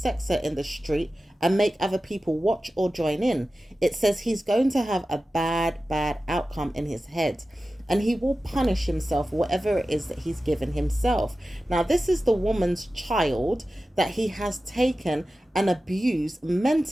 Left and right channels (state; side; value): normal; both; correlation 0.94